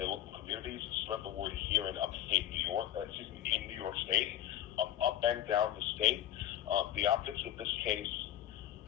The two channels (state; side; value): quieter; right; 12.5 dB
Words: local communities. Spread the word here in upstate New York. In New York State, up and down the state. The optics of this case